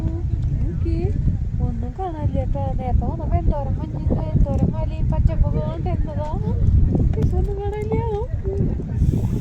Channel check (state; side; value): identical; both; correlation 1.00